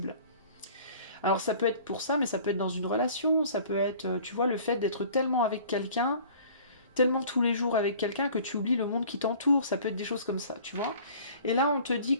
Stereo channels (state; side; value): inverted; both; correlation -0.48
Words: Alors ça peut être pour ça, mais ça peut être dans une relation, ça peut être, tu vois, le fait d'être tellement avec quelqu'un, tellement tous les jours avec quelqu'un que tu oublies le monde qui t'entoure, ça peut être des choses comme ça, tu vois. Et là on te dit